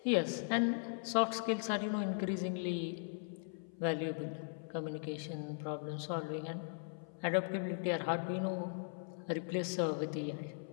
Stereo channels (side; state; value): right; silent; 52 dB below the other